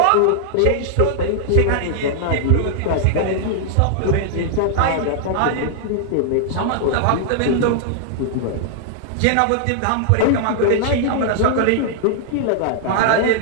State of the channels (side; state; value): both; different; correlation -0.01